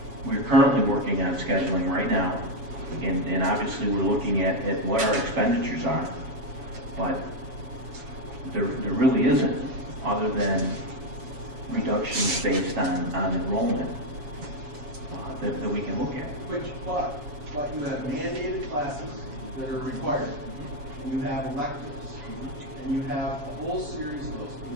We're currently working on scheduling right now, and obviously we're looking at what our expenditures are, but there really isn't, other than reductions based on enrollment that we can look at. But you have mandated classes that are required, and you have electives, and you have a whole series of those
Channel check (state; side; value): late; left; 6.9 ms